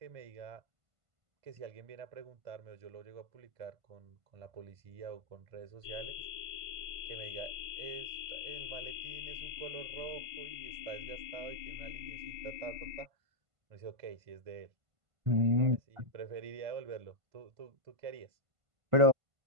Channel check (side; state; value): left; late; 1.5 ms